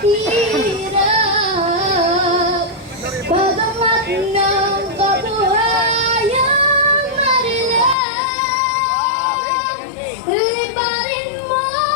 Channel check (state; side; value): drops out; right; at 8.0 s